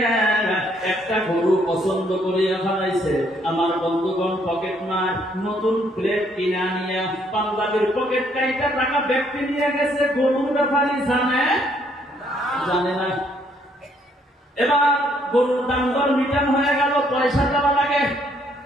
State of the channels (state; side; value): normal; both; correlation 0.68